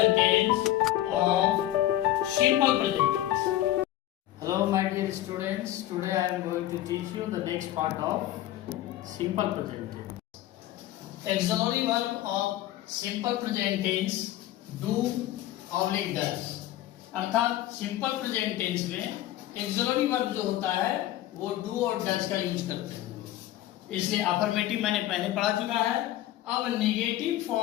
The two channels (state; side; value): quieter; right; 14.2 dB